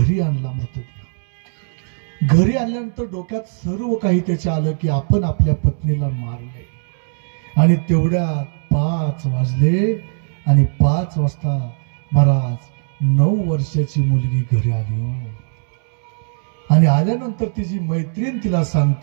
आणला मृतदेह. घरी आणल्यानंतर डोक्यात सर्व काही त्याच्या आलं की आपण आपल्या पत्नीला मारले. आणि तेवढ्यात 5 वाजले आणि 5 वाजता महाराज 9 वर्षाची मुलगी घरी आली हो. आणि आल्यानंतर तिची मैत्रीण तिला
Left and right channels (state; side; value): silent; left; 66 dB below the other